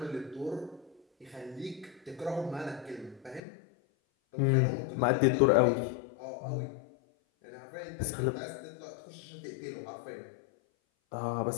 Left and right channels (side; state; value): right; drops out; at 3.4 s